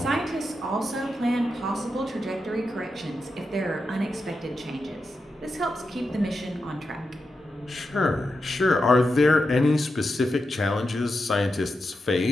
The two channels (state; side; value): normal; both; correlation 0.88